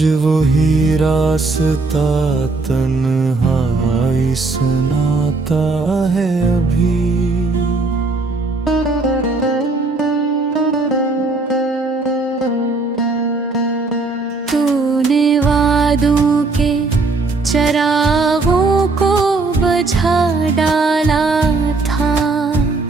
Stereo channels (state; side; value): quieter; left; 3.6 dB